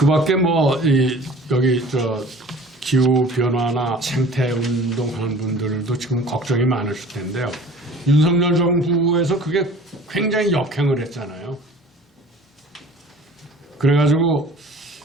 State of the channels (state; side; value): normal; both; correlation 0.46